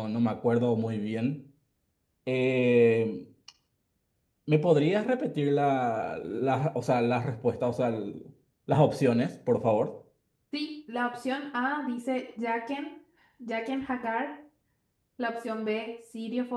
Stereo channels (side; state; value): both; identical; correlation 1.00